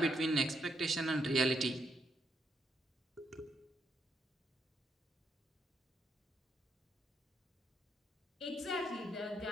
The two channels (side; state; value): both; normal; correlation 0.78